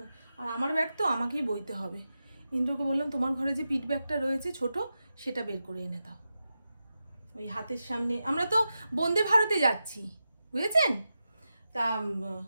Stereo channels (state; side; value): inverted; both; correlation -0.90